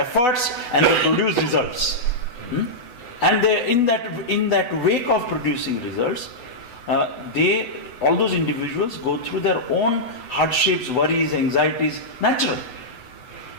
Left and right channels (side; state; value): right; late; 8.1 ms